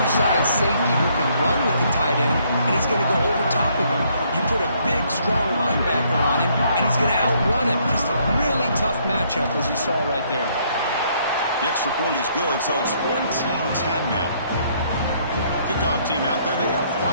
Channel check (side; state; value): both; inverted; correlation -0.68